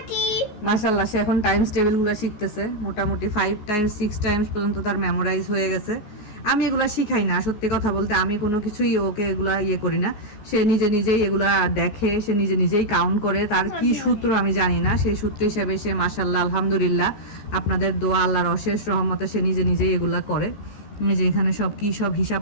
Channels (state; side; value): late; right; 14 ms